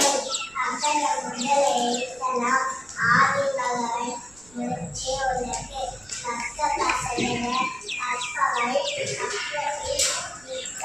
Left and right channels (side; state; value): right; noise; rumble, 27 dB below the sound